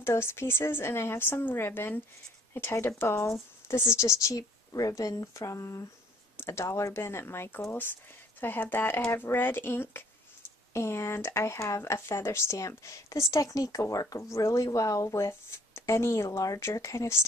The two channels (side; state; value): both; normal; correlation 0.59